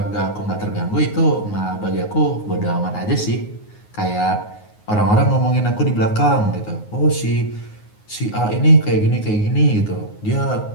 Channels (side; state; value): right; late; 9.5 ms